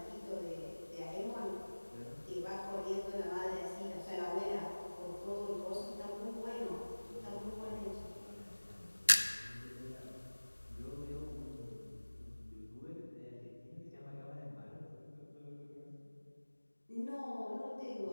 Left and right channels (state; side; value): inverted; both; correlation -1.00